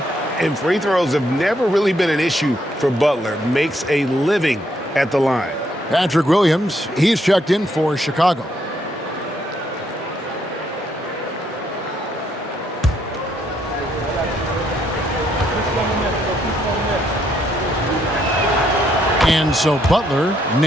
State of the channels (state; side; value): normal; both; correlation 0.73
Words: And free throws have never really been an issue for Butler. Makes a living at the line. Patrick Williams, he's checked in for Chicago. And so Butler